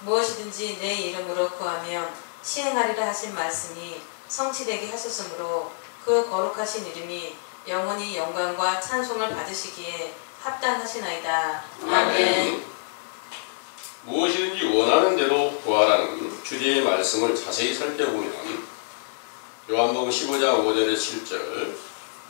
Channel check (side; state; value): right; silent; 61 dB below the other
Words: 무엇이든지 내 이름으로 구하면 시행하리라 하신 말씀이 성취되게 하셨으므로 그 거룩하신 이름이 영원히 영광과 찬송을 받으시기에 합당하시나이다. 아멘. 무엇이든지 원하는 대로 구하라는 주제의 말씀을 자세히 살펴보면 요한복음 15장 5절에 7절